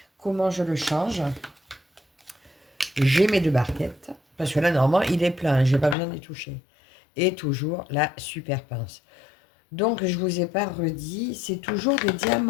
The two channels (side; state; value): right; drops out; at 6.0 s